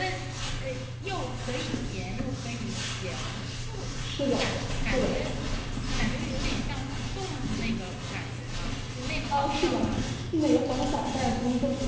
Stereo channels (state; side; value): identical; both; correlation 1.00